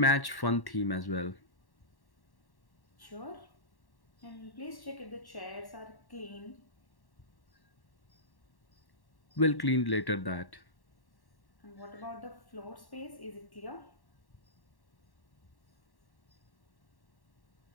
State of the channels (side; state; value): right; late; 1.1 ms